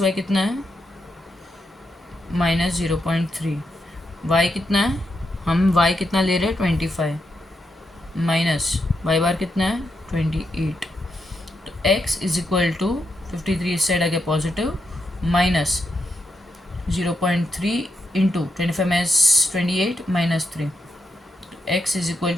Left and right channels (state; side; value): normal; both; correlation 0.83